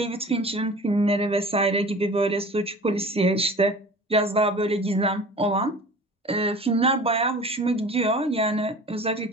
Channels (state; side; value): normal; both; correlation 0.41